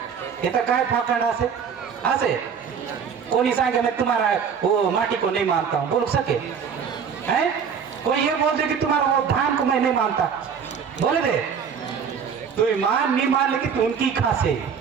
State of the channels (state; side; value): quieter; left; 6.8 dB